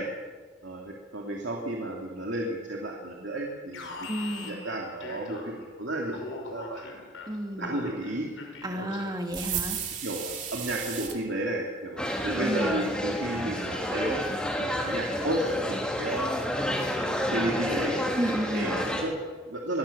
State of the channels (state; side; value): normal; both; correlation 0.53